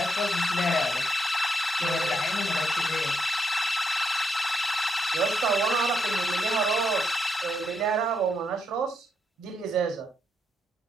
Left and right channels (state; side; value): normal; both; correlation 0.78